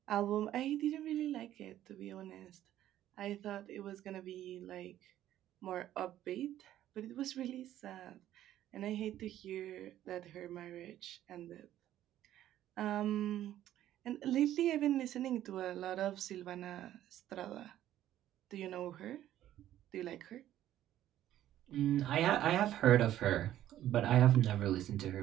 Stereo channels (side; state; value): left; quieter; 12.6 dB